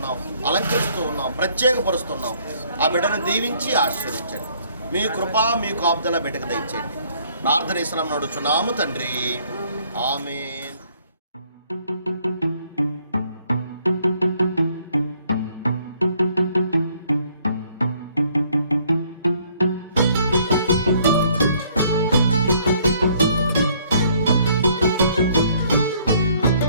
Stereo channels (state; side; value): inverted; both; correlation -0.63